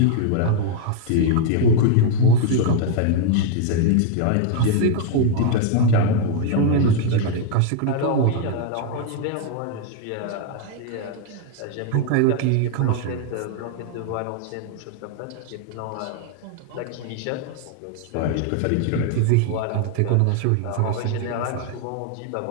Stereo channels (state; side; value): different; both; correlation 0.00